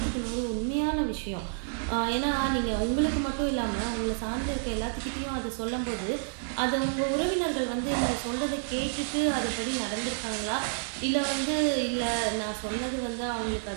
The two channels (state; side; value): silent; left; digital silence